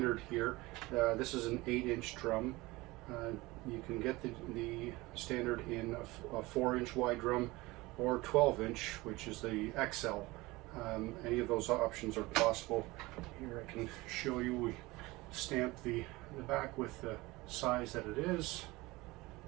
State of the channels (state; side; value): quieter; left; 21.2 dB